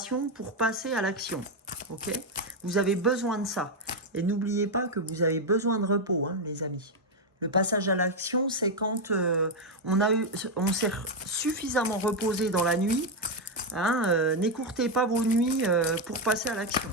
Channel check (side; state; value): both; normal; correlation 0.04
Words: pour passer à l'action. Ok? Vous avez besoin de ça. Et n'oubliez pas que vous avez besoin de repos, hein, les amis. Le passage à l'action, c'est quand on s'est suffisamment reposé dans la nuit. Hein, n'écourtez pas vos nuits pour passer à l'action.